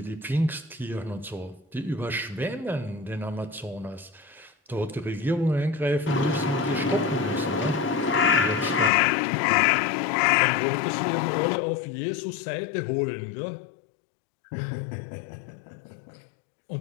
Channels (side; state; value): right; drops out; at 8.9 s